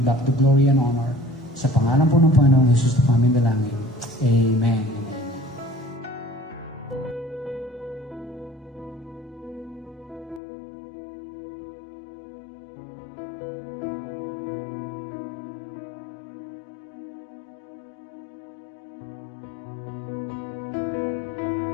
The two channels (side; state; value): right; drops out; at 10.4 s